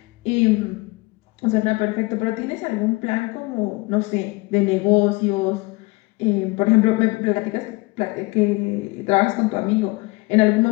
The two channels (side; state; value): right; quieter; 24.6 dB